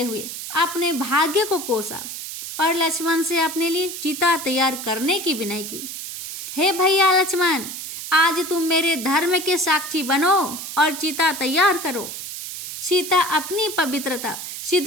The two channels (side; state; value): right; noise; hiss, 8 dB below the sound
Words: हुए अपने भाग्य को कोसा और लक्ष्मण से अपने लिए चिता तैयार करने की विनय की। हे भैया लक्ष्मण, आज तुम मेरे धर्म के साक्षी बनो और चिता तैयार करो। सीता अपनी पवित्रता